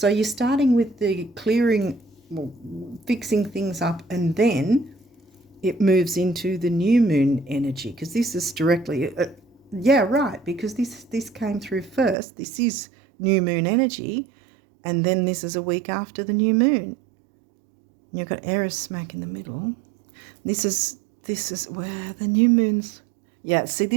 you're starting with the clearing, well, fixing things up, and then it moves into the new moon energy, because this is directly, yeah, right, because this came through first. This is new moon energy, and then this is a week after the new moon. You've got Eris smack in the middle. This is where the new moon's. Yeah, see,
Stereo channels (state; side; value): drops out; left; at 12.2 s